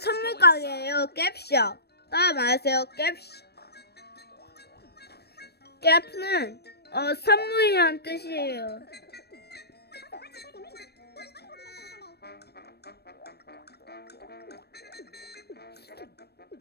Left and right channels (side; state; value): right; late; 0.47 ms